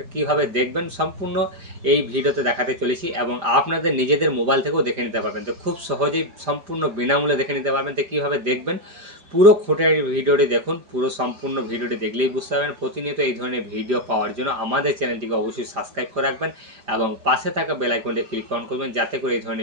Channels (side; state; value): left; late; 5.0 ms